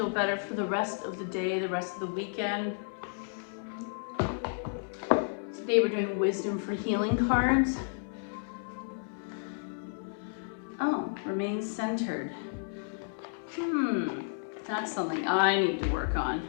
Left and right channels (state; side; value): silent; right; 57 dB below the other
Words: better for the rest of the day, the rest of the weekend. Today we're doing wisdom for healing cards. Oh, remain centered. That's something I need to work on.